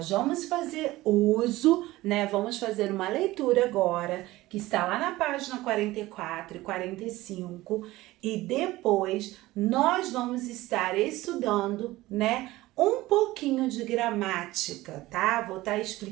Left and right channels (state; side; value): quieter; left; 18.0 dB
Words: vamos fazer uso, né? Vamos fazer uma leitura agora, que está lá na página 44 e 45, e depois nós vamos estar estudando, né, um pouquinho de gramática, tá? Vou estar